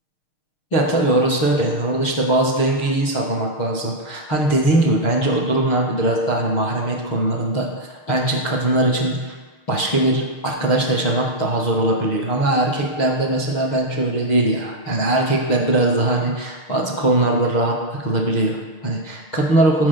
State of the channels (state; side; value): late; right; 6.5 ms